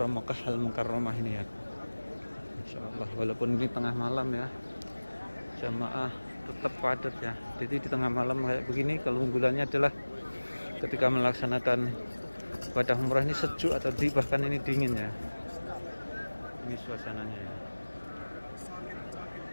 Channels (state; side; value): inverted; both; correlation -1.00